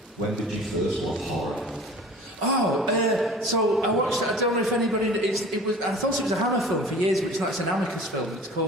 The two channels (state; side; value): normal; both; correlation 0.43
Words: When did you first love horror? So I watched. I don't know if anybody. It was. I thought it was a Hammer film for years, but it's not. It's an Amicus film. It's